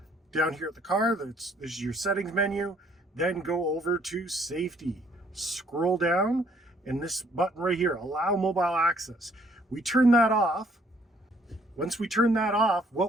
down here at the car, this is your settings menu. Then go over to safety. Scroll down and this button right here, allow mobile access. We turn that off. Once we turn that off,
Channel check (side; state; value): both; normal; correlation 0.63